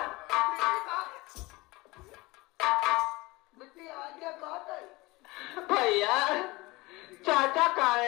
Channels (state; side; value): quieter; right; 22.2 dB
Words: भैया चाचा कहाँ